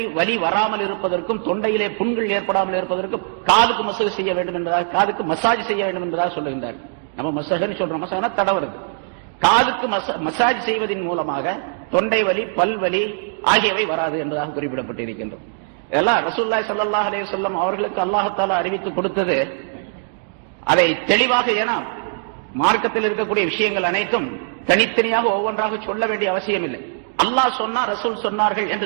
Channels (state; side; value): silent; left; digital silence